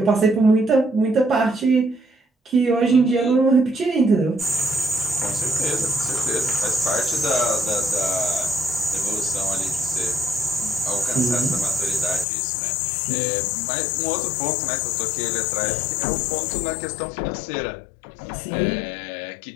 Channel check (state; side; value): drops out; right; at 12.2 s